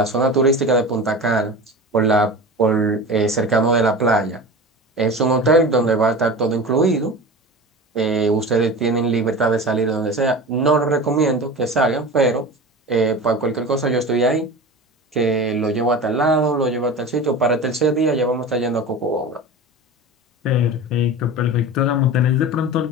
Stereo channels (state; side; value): normal; both; correlation 0.31